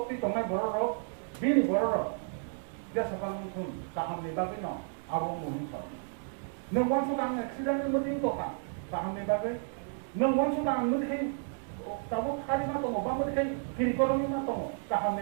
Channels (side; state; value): left; silent; 56 dB below the other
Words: tonga boro bini boro dia sakal musun taham ni bagai no abong munin sa nang wan sudang accident ni mutin to ka taham ni bagai nang wan sudang mutin tabu khali ma to ba mutin kiri koromi ma to taham